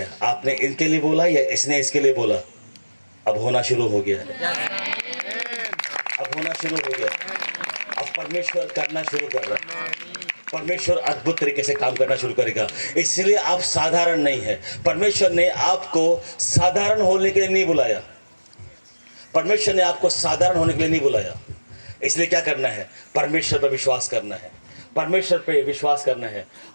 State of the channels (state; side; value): inverted; both; correlation -1.00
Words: आपने इनके लिए बोला या इसने इसके लिए बोला, अब होना शुरू हो गया है। होना शुरू हो गया। अब परमेश्वर करना शुरू कर रहा है। परमेश्वर अद्भुत तरीके से काम करना शुरू करेगा। इसलिए आप साधारण नहीं है। परमेश्वर ने आपको साधारण होने के लिए नहीं बुलाया। परमेश्वर ने आपको साधारण होने के लिए नहीं बुलाया। इसलिए क्या करना है? परमेश्वर पर विश्वास करना है। परमेश्वर पे विश्वास करना है।